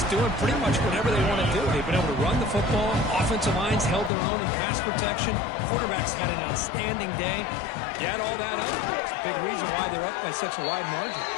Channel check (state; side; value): drops out; right; at 4.1 s